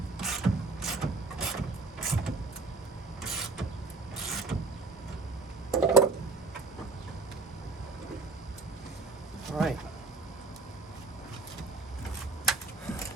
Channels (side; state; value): left; quieter; 3.7 dB